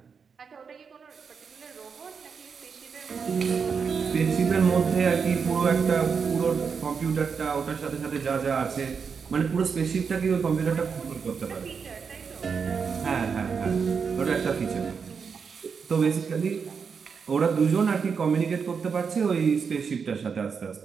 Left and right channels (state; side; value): quieter; left; 5.9 dB